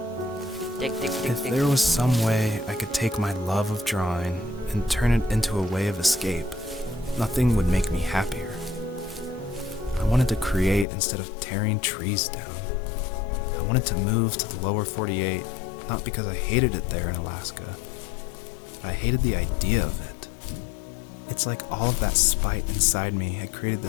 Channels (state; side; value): drops out; right; at 10.9 s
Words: If there was some way I could take my love of drawing and turn it into a way of escape, nothing would make me happier. I wanted to create instead of tearing trees down. I wanted to move to the lower 48, not because I hated it there in Alaska, but I hated the idea of it. It's like all of that spite inside me had created